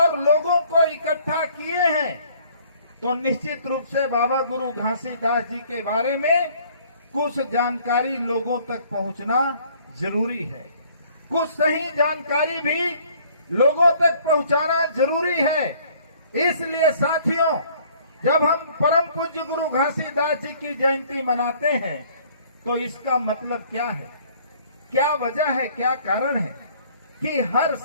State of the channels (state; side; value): inverted; both; correlation -0.57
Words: लोगों को इकट्ठा किए हैं, तो निश्चित रूप से बाबा गुरु घासीदास जी के बारे में कुछ जानकारी लोगों तक पहुंचना जरूरी है। कुछ सही जानकारी भी लोगों तक पहुंचाना जरूरी है। इसलिए साथियों, जब हम परम पूज्य गुरु घासीदास जी की जयंती मनाते हैं तो इसका मतलब क्या है, क्या वजह है, क्या कारण है कि हर